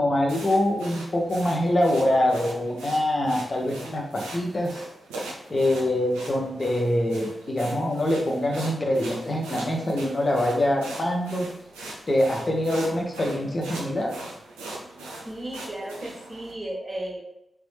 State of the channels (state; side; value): normal; both; correlation 0.89